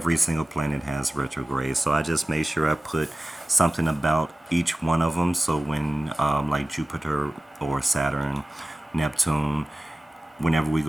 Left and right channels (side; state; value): both; normal; correlation 0.96